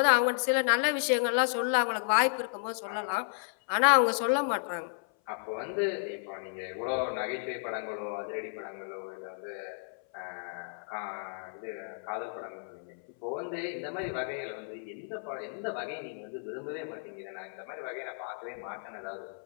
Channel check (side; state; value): right; silent; 56 dB below the other